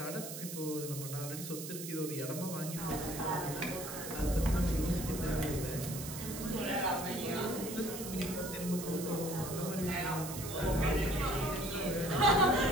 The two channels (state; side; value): noise; right; hiss, 8 dB below the sound